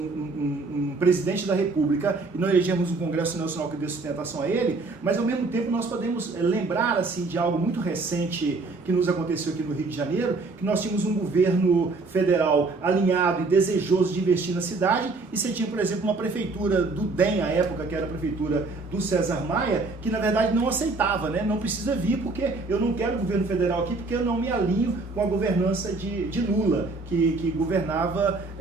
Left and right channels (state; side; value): quieter; left; 3.6 dB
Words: presidente da República e não elegermos um Congresso Nacional que dê sustentação a ele, mas ao mesmo tempo nós podemos lembrar assim, de algo muito recente que nos aconteceu aqui no Rio de Janeiro, que nós tínhamos um governo federal alinhado e desejoso de investir na cidade, e você tinha, por exemplo, uma prefeitura do DEM, à época, que era a prefeitura do César Maia, que na verdade não aceitava, não precisa vir porque eu não quero o governo federal aqui, porque eu não me alinho com a governança de Lula, que governava